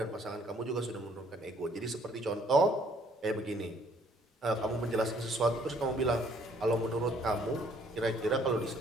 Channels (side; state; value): both; normal; correlation 0.62